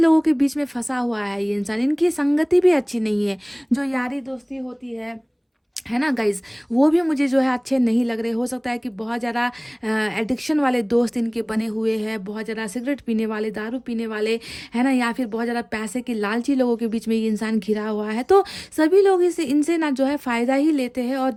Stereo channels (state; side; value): identical; both; correlation 1.00